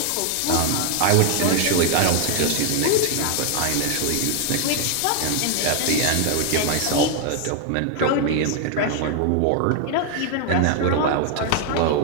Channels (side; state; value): both; different; correlation 0.00